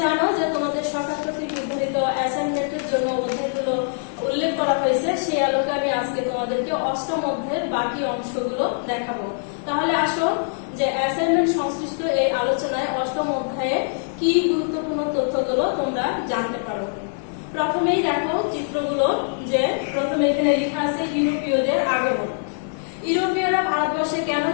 জানো যে তোমাদের সরকার কর্তৃক নির্ধারিত অ্যাসাইনমেন্টের জন্য অধ্যায়গুলো উল্লেখ করা হয়েছে। সেই আলোকে আমি আজকে তোমাদেরকে অষ্টম অধ্যায়ের বাকি অংশগুলো দেখাবো। তাহলে আসো যে অ্যাসাইনমেন্ট সংশ্লিষ্ট এই আলোচনায় অষ্টম অধ্যায়ে কি গুরুত্বপূর্ণ তথ্যগুলো তোমরা জানতে পারো। প্রথমেই দেখো চিত্রগুলো, যে প্রথমে এখানে লেখা আছে ইউরোপীয়দের আগমন। ইউরোপীয়রা ভারতবর্ষে কেন,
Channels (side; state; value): right; silent; 59 dB below the other